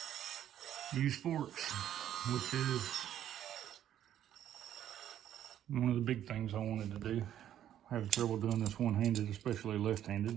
use forks, which is one of the big things I wanted to do. I have trouble doing this one-handed, especially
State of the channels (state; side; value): quieter; left; 11.0 dB